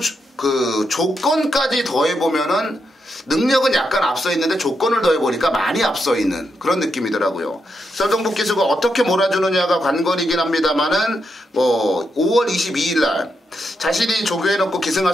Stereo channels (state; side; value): normal; both; correlation 0.83